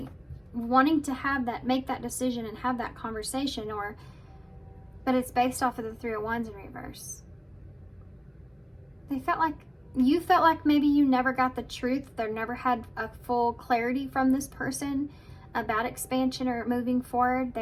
wanting to make that decision and have that conversation, but it's based off of the Three of Wands in reverse. You felt like maybe you never got the truth. They never had a full clarity from this person about expansion or moving forward.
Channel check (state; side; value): identical; both; correlation 1.00